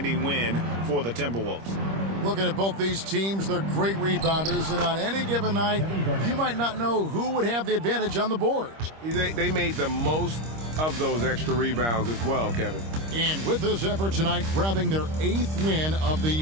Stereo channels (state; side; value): late; left; 26 ms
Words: win for the Timberwolves. Looking at both these teams, they're great rebounders, and on any given night, you might not know who would have the advantage on the board. They made the most of those extra rebounds as well, Kevin. And with this effort tonight, grabbing their 8th win of the